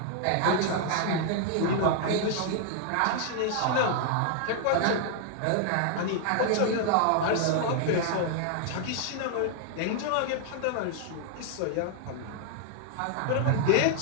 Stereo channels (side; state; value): both; different; correlation 0.00